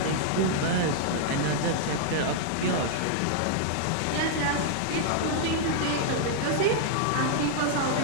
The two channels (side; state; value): both; different; correlation -0.01